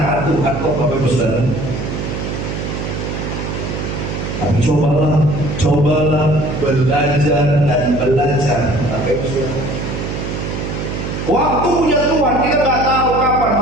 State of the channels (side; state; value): right; noise; hum, 5 dB below the sound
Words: Tuhan kok Bapak Ibu Saudara. Tapi cobalah belajar dan belajar. Waktu punya Tuhan kita nggak tahu kapan,